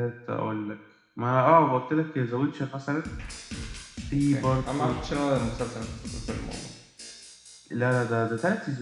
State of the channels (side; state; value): both; identical; correlation 1.00